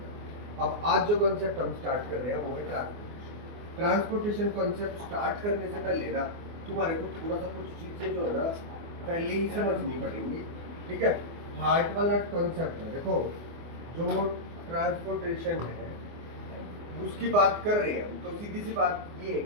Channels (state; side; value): late; left; 24 ms